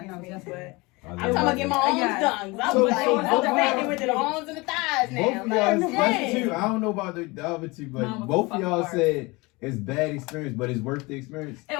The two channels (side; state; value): right; quieter; 24.6 dB